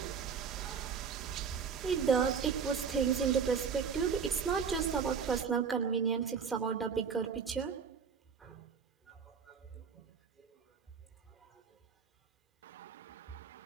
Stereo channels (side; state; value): left; quieter; 6.3 dB